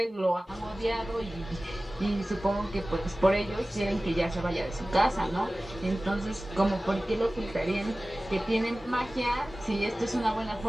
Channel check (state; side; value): normal; both; correlation 0.97